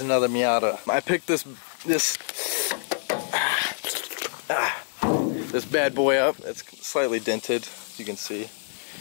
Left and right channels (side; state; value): right; silent; 61 dB below the other